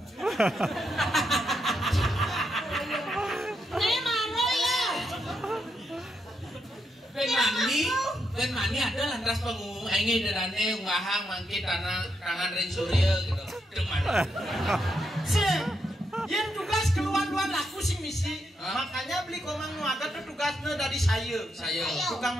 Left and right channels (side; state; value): both; normal; correlation 0.81